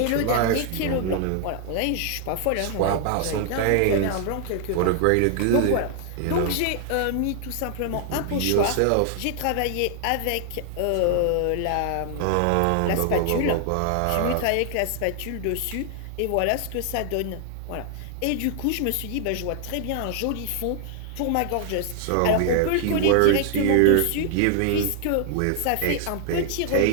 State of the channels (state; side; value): different; both; correlation 0.00